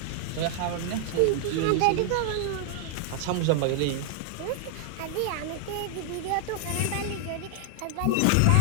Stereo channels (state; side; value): different; both; correlation 0.00